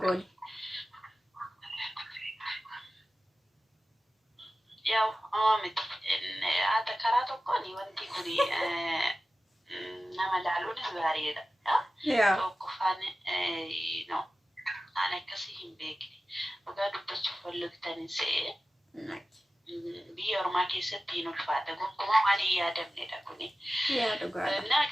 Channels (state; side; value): normal; both; correlation 0.95